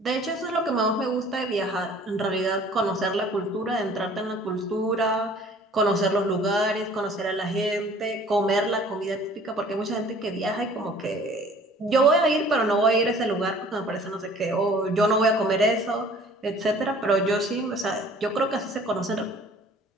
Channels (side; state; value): both; normal; correlation 0.51